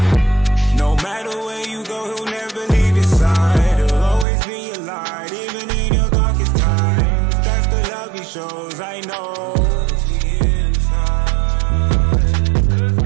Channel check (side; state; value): left; drops out; at 4.2 s